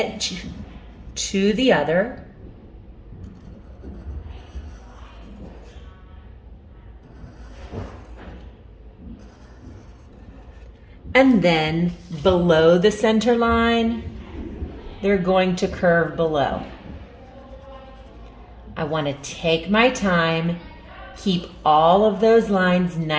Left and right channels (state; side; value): identical; both; correlation 1.00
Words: to the other. And then below the center line, they're going to curve below. I want to take my time, keep all of those lines